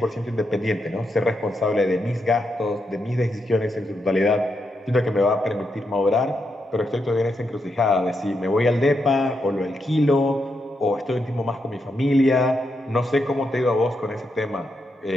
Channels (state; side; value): normal; both; correlation 0.83